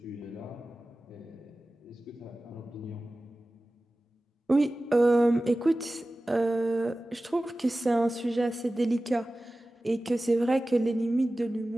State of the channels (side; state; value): both; normal; correlation 0.96